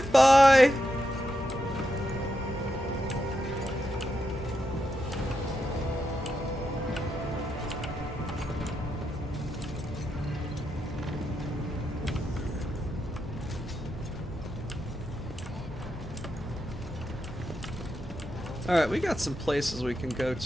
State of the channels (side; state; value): both; normal; correlation 0.85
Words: Alright, we got some places we can go